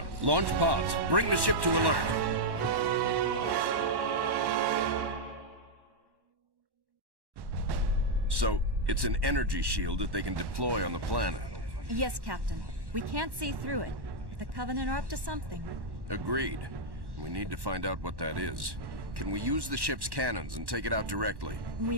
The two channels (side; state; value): left; late; 1.1 ms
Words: launch pods. Bring the ship to alert. So, it's an energy shield that they can deploy on the planet. Yes, Captain. We can't see through it. The Covenant are up to something. Agreed. We need to find out what that is. Can we use the ship's cannons and take it out directly?